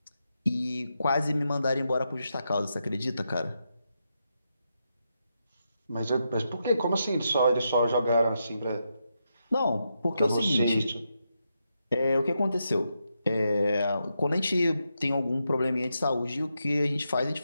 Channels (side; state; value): both; inverted; correlation -0.84